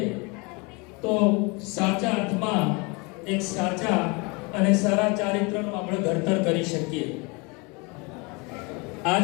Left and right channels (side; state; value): right; quieter; 28.9 dB